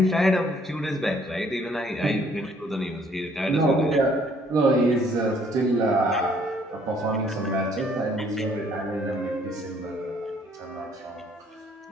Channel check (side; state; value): both; normal; correlation 0.63